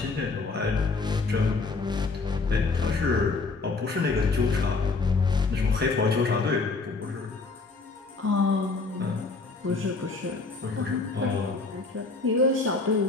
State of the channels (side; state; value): right; quieter; 3.9 dB